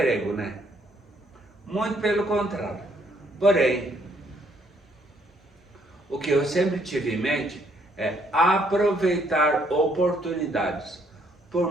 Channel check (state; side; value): normal; both; correlation 0.68